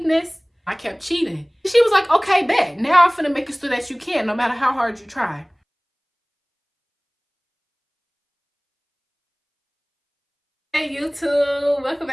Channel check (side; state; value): both; identical; correlation 1.00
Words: this? I kept cheating. She was like, okay, bet. Now I'm finna make it so that you can, no matter how hard you try. Hey YouTube, welcome